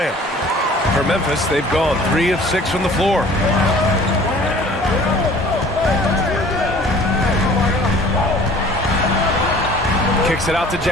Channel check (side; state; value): both; normal; correlation 0.49